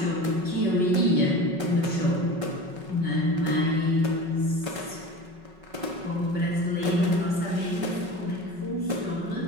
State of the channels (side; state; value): left; late; 5.3 ms